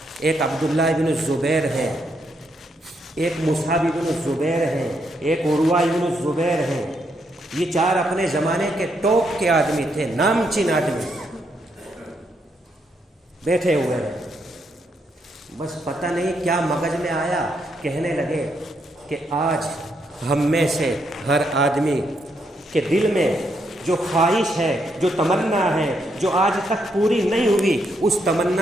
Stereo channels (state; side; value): normal; both; correlation 0.77